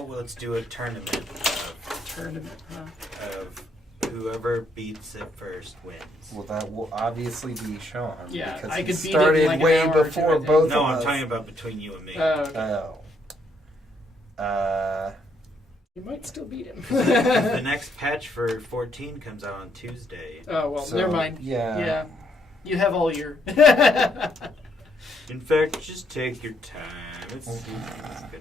let's do a tournament Tournament, huh? of whoever beats it first wins. Well, that will obviously be Sean. Yeah, because I he could beat it in started like an way hour or two, I before think. both No, of I'm us. talking about between you and me. Oh. You might still beat him. The next patch for 14 comes out on Tuesday. Oh, well, So, never mind. yeah. Yeah. You have all year. In fact, just take your time. It's gonna be.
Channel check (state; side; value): normal; both; correlation 0.73